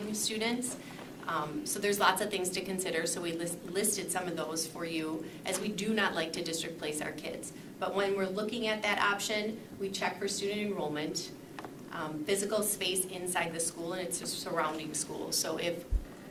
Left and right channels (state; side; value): identical; both; correlation 1.00